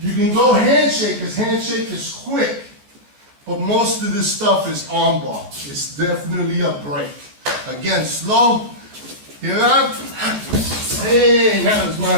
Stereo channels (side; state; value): left; late; 14 ms